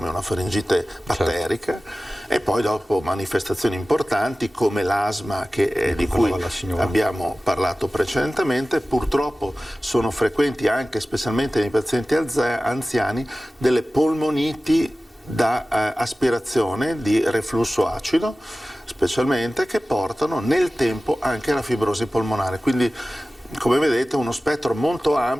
una faringite batterica, e poi dopo manifestazioni importanti come l'asma, di cui abbiamo parlato precedentemente. Purtroppo sono frequenti anche, specialmente nei pazienti anziani, delle polmoniti da aspirazione di reflusso acido, specialmente, che portano nel tempo anche alla fibrosi polmonare. Quindi, come vedete, uno spettro molto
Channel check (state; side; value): normal; both; correlation 0.96